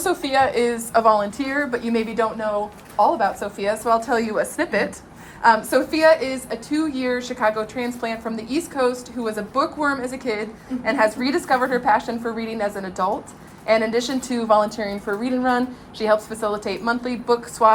is a volunteer, but you maybe don't know all about Sophia, so I'll tell you a snippet. Sophia is a 2-year Chicago transplant from the East Coast who was a bookworm as a kid and has rediscovered her passion for reading as an adult. And in addition to volunteering for Read and Run, she helps facilitate monthly book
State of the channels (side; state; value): both; identical; correlation 1.00